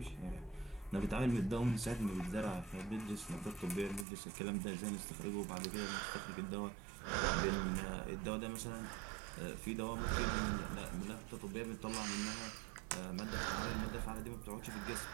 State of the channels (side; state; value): left; drops out; at 4.0 s